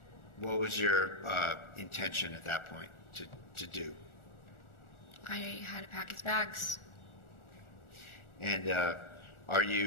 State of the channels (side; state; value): right; late; 1.4 ms